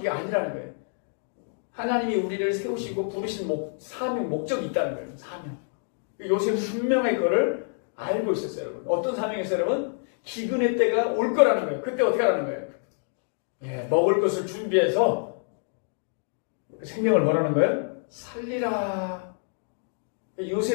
아니라는 거예요. 하나님이 우리를 세우시고 부르신 사명, 목적이 있다는 거예요. 사명. 요셉은 분명히 그거를 알고 있었어요, 여러분. 어떤 사명이었어요, 여러분? 기근의 때가 올 거라는 거예요. 그때 어떻게 하라는 거예요? 예, 먹을 것을 준비해서 그 생명을 뭐라는 거예요? 살리라.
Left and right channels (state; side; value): silent; right; 60 dB below the other